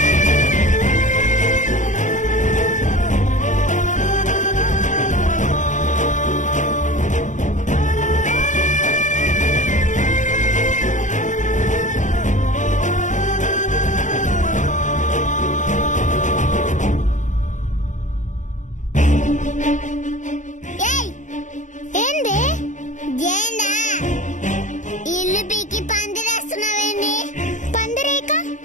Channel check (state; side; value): late; right; 0.36 ms